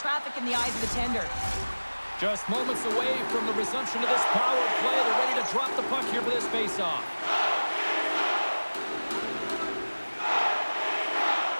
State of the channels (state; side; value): inverted; both; correlation -1.00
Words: in the eyes of the tender. Just moments away from the resumption of this power play. They're ready to drop the puck here for this faceoff.